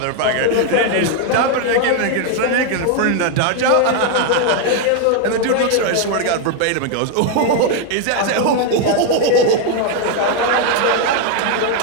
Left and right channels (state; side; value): different; both; correlation 0.01